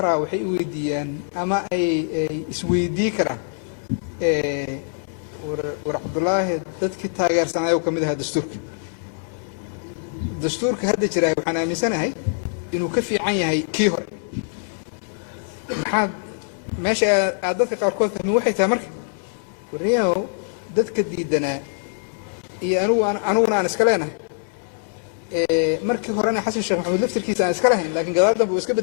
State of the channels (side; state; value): right; silent; 62 dB below the other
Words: waxay u weydiiyaan ama ay isweydii karaan war Cabdullaahi dadkii taageersanaayo kamid ahaa dastuurka hadda jira waxaan aaminsanahay inuu ka fiican yahay kii hore maxaa meesha dadka qaarkood fahmi waxay tahay marka wariyaho dadka diidanaa iyo aniguna aan iska leenahay markii horena xasan sheekh maxamuud laftirkiisa aan iska lahayn laakiin gadaal dambe uu iska